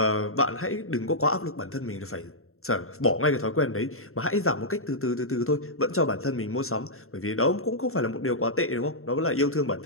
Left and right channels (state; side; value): late; right; 0.62 ms